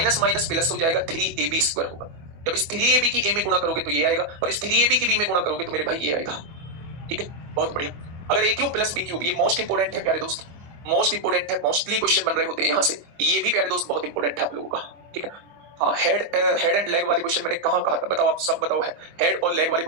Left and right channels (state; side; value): late; left; 24 ms